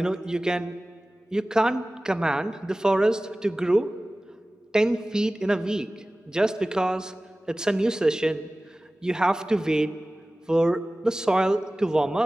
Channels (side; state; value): both; normal; correlation 0.97